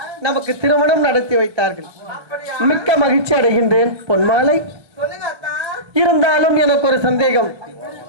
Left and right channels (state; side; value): late; left; 1.2 ms